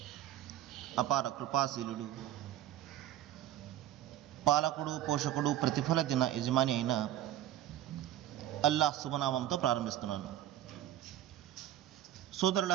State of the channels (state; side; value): quieter; left; 12.4 dB